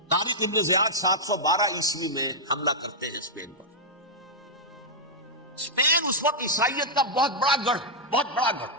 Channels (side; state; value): both; normal; correlation -0.07